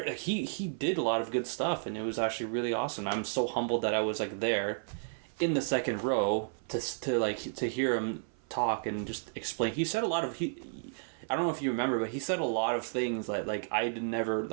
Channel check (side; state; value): left; silent; 56 dB below the other